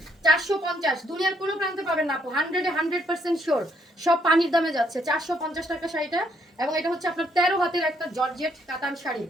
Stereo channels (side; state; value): both; normal; correlation 0.71